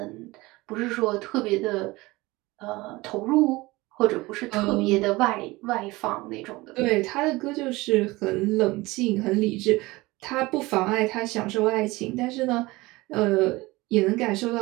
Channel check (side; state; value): left; quieter; 21.1 dB